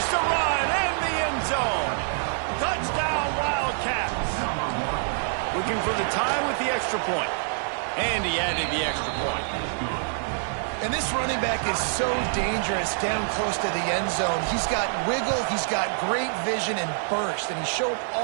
the run and the end zone. Touchdown, Wildcats. Looking for the time with the extra point. And he added the extra point. And this running back is so dangerous down close to the end zone. He's got wiggle, he's got great vision and burst, and he showed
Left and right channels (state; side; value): silent; left; 57 dB below the other